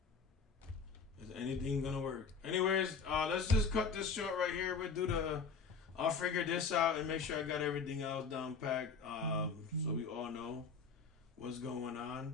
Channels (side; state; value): right; quieter; 5.2 dB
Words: Is anything gonna work? Anyways, let's just cut this short right here. I'll figure this out and make sure I got everything else down packed. So we all know what's going